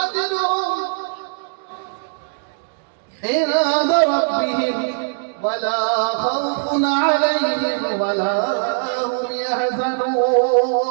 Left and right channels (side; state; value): left; silent; digital silence